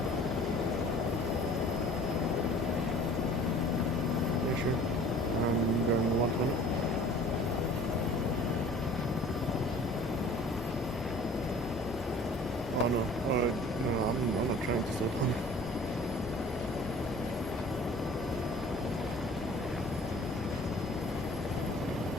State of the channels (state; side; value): normal; both; correlation 0.48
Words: Oh no, no, I'm not trying to stop him.